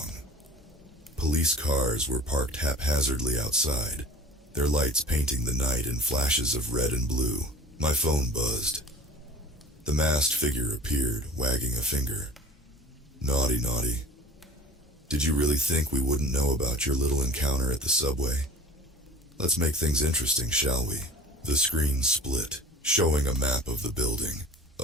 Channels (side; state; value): both; normal; correlation 0.42